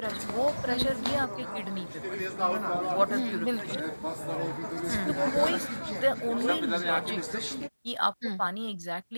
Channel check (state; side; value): inverted; both; correlation -1.00